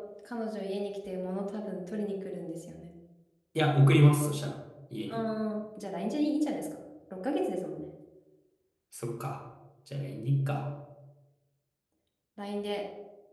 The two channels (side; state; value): both; identical; correlation 1.00